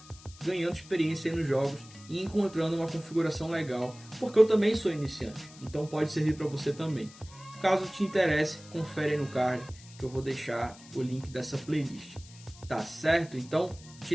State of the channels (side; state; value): left; noise; hiss, 21 dB below the sound